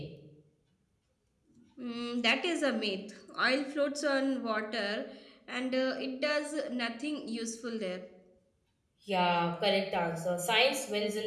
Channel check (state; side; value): identical; both; correlation 1.00